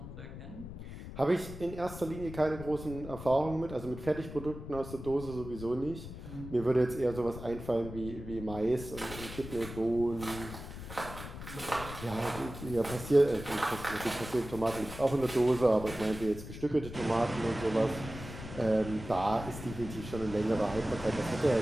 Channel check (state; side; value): noise; left; rumble, 11 dB below the sound